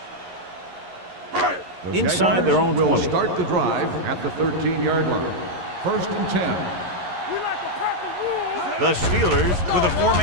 line. Inside their own 20. Will start the drive at the 13-yard line. 1st and 10. The Steelers with a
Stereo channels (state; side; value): late; left; 11 ms